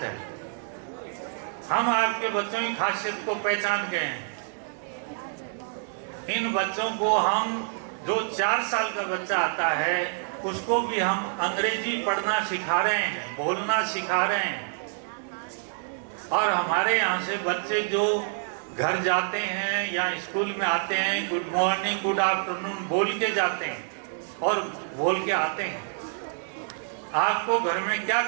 है, हम आपके बच्चों की खासियत को पहचान गए हैं। इन बच्चों को हम जो 4 साल का बच्चा आता है उसको भी हम अंग्रेजी पढ़ना सिखा रहे हैं, बोलना सिखा रहे हैं। और हमारे यहाँ से बच्चे जो घर जाते हैं या स्कूल में आते हैं, गुड मॉर्निंग गुड आफ्टरनून बोल के जाते हैं और बोल के आते हैं। आपको घर में क्या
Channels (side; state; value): left; silent; digital silence